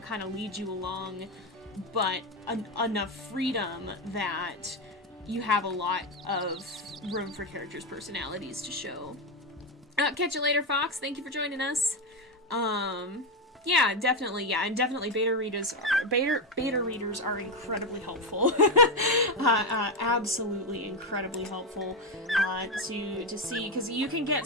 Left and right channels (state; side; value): normal; both; correlation 0.10